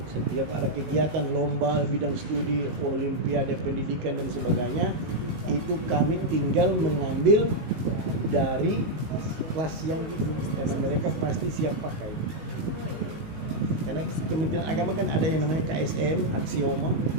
Setiap ada kegiatan lomba bidang studi, olimpiade pendidikan dan sebagainya, itu kami tinggal mengambil dari kelas yang itu, karena mereka pasti siap pakai. Karena Kementerian Agama kan ada yang namanya KSM, aksioma,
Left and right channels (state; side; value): late; left; 19 ms